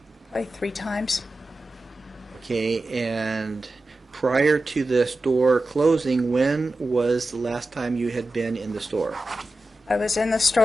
Probably 3 times. Okay, and prior to the store closing, when was the last time you had been in the store? I was in the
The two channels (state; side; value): normal; both; correlation 0.93